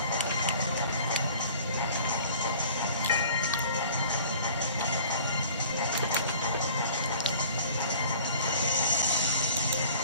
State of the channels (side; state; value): both; inverted; correlation -0.47